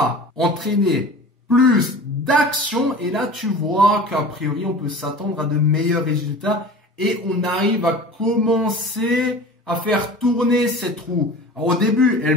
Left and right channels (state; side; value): normal; both; correlation 0.38